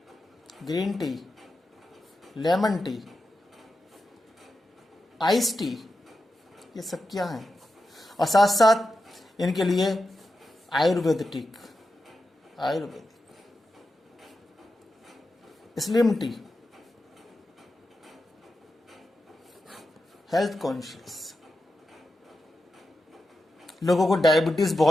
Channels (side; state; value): both; normal; correlation 0.89